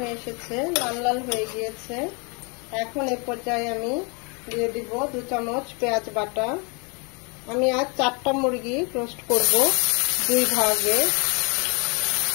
এসেছে, লাল লাল হয়ে গিয়েছে। এখন এই পর্যায়ে আমি দিয়ে দিব 2 চামচ পেঁয়াজ বাটা। আমি আজ 4টা মুরগি রোস্ট করব 2 ভাগে।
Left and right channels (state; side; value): quieter; right; 32.5 dB